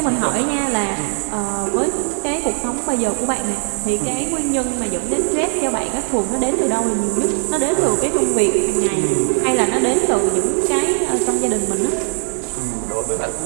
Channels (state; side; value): silent; left; digital silence